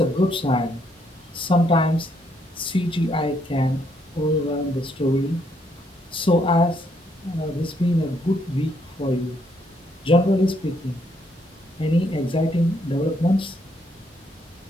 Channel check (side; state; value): both; normal; correlation 0.72